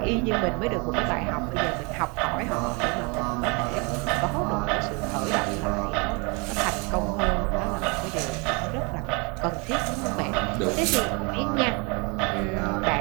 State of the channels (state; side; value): quieter; left; 30.8 dB